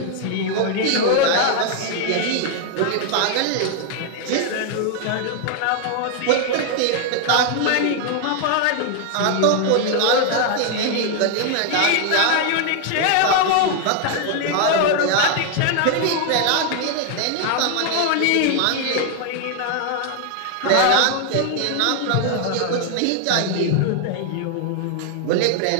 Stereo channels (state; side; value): different; both; correlation 0.00